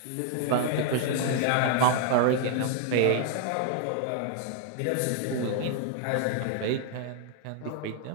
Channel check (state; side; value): different; both; correlation 0.00